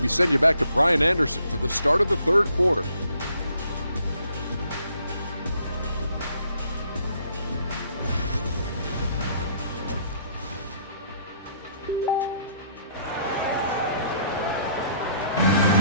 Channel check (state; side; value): inverted; both; correlation -0.65